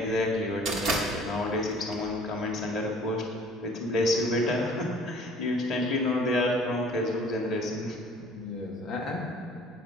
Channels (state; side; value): normal; both; correlation 0.52